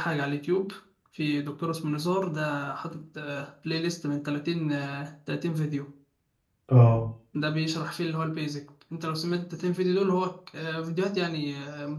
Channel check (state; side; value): identical; both; correlation 1.00